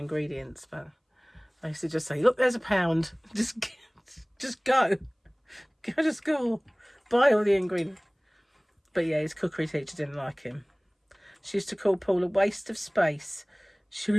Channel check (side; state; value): both; identical; correlation 1.00